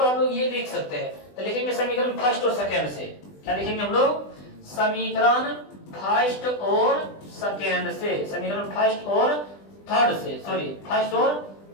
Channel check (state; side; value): late; right; 20 ms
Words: हम लोग ये लिख सकते हैं, तो लिखेंगे समीकरण फर्स्ट और सेकंड से। क्या लिखेंगे हम लोग, समीकरण फर्स्ट और सेकंड से, समीकरण फर्स्ट और थर्ड से, सॉरी फर्स्ट और